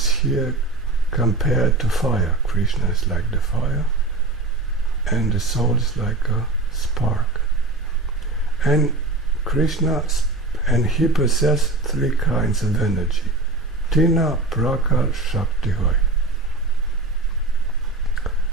here compared to fire. Krishna is like the fire, and the soul is like a spark. And Krishna, and he possesses 3 kinds of energy. Tina Prakar Shakti Hoy.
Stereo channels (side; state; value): left; quieter; 3.2 dB